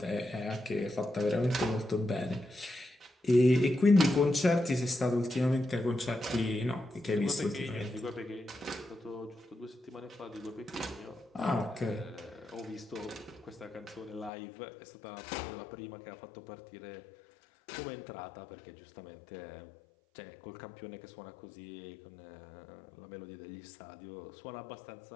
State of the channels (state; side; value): drops out; right; at 14.3 s